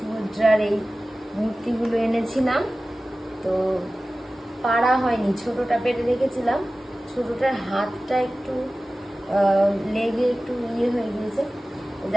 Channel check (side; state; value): both; normal; correlation 0.96